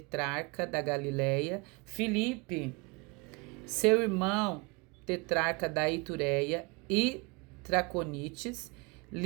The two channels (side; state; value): left; quieter; 28.5 dB